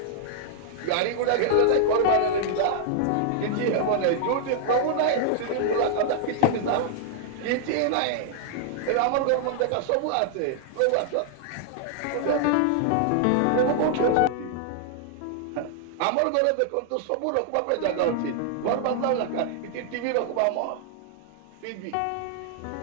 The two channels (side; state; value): both; different; correlation -0.01